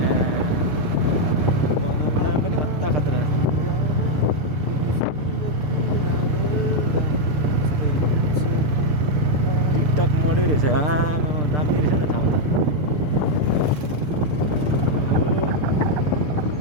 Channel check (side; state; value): left; late; 6.7 ms